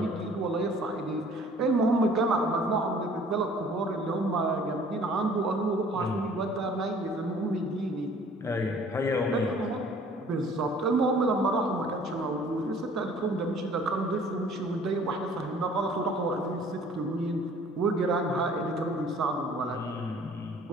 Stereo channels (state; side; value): normal; both; correlation 0.53